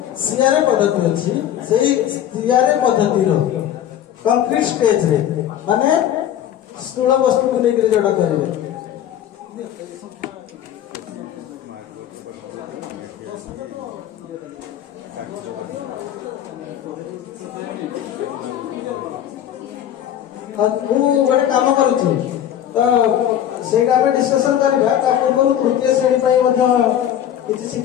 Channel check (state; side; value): quieter; right; 10.7 dB